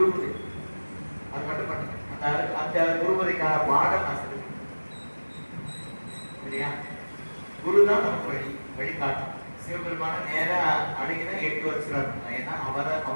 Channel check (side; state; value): both; inverted; correlation -1.00